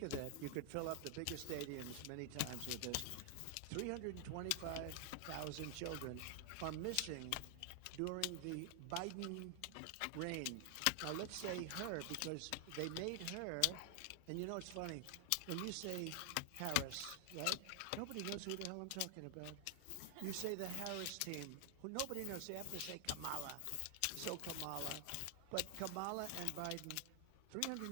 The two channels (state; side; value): different; both; correlation 0.00